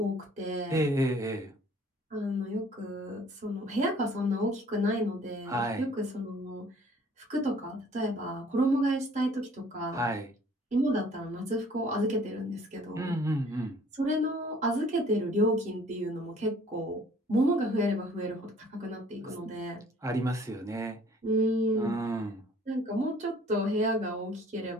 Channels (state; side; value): normal; both; correlation 0.55